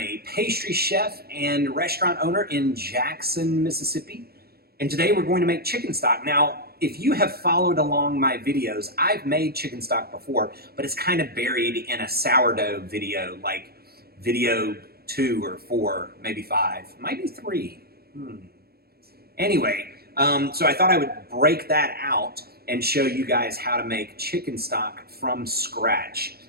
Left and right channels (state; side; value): late; left; 0.45 ms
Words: pastry chef and restaurant owner in Jackson, Mississippi. And today we're going to make chicken stock. Now, if you have followed along my videos, I've made chicken stock before, but it's kind of buried in a sourdough video, like video 2 or 4, maybe 5, maybe 3. Anyway, so I thought I would break that out and show you guys how to make chicken stock from scratch,